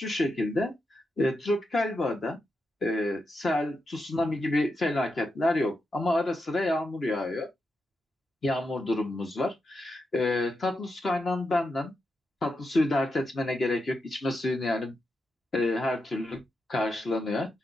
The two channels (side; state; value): both; normal; correlation 0.86